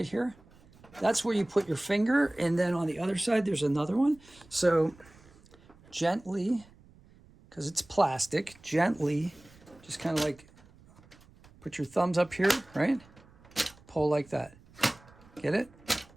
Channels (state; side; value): noise; right; rumble, 26 dB below the sound